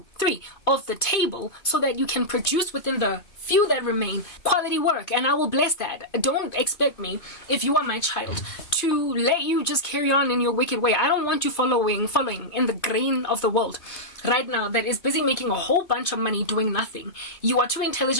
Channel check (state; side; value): late; right; 2.5 ms